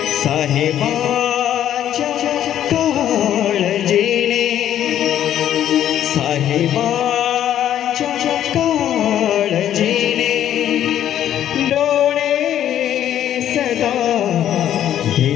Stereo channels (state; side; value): quieter; right; 11.0 dB